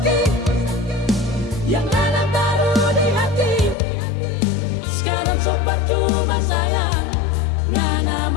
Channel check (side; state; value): right; drops out; at 3.8 s